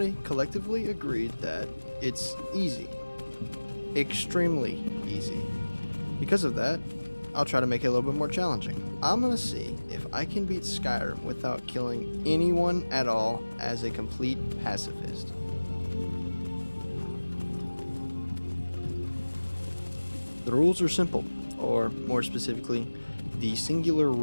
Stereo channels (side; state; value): both; inverted; correlation -1.00